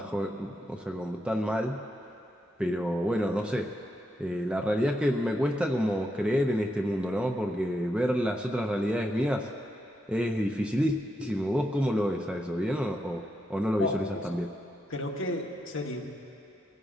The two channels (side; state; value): both; normal; correlation 0.83